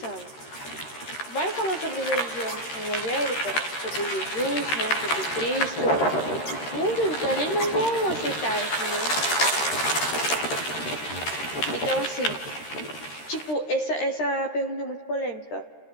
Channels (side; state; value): right; late; 13 ms